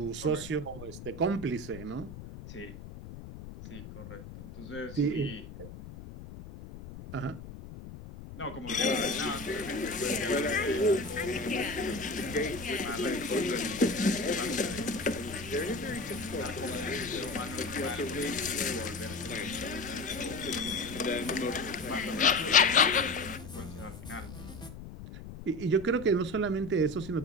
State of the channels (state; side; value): noise; left; rumble, 13 dB below the sound